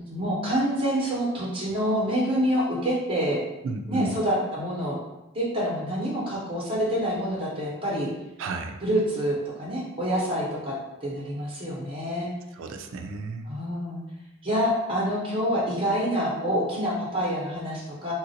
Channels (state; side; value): normal; both; correlation 0.37